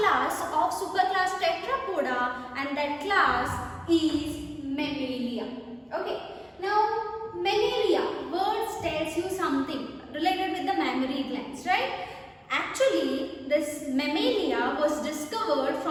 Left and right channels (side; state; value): both; identical; correlation 1.00